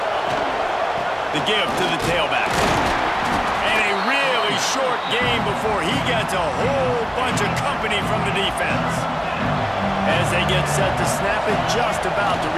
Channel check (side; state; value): both; identical; correlation 1.00